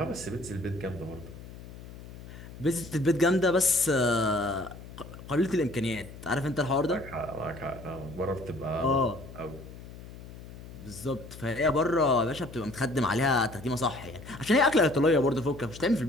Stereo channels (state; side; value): noise; left; hum, 15 dB below the sound